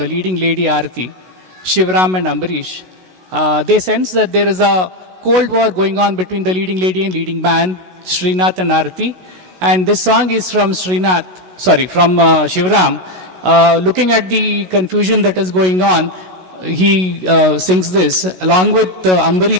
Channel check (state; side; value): late; left; 16 ms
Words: leading lady Aarti, Shivram and Ambarish. They sense that there is a cold war going on between the leading lady and leading man, Srinath and Aarti. And this song is from Shivram. Looking at the confusion that is going on, he sings this along with